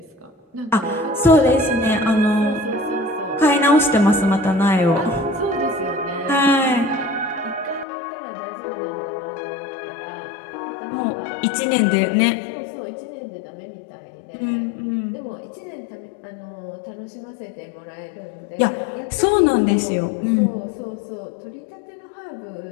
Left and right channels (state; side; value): drops out; right; at 7.9 s